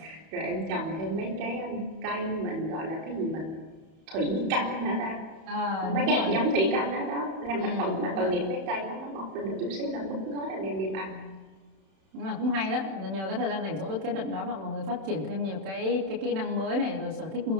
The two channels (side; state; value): left; late; 31 ms